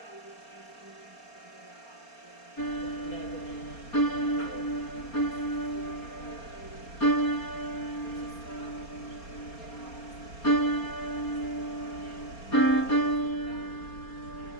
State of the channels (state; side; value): late; right; 4.3 ms